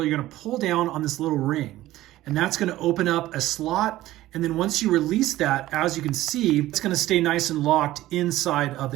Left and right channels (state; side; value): quieter; left; 15.6 dB